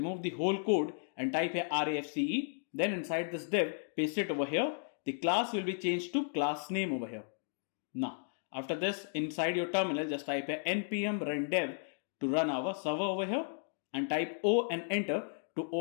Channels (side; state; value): right; silent; digital silence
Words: the whole code and type here RAFCE. Then inside this div paste it over here. The class will be changed to class name over here. Now after this inside your terminal just type here npm run dev to run our server over here and type O and enter to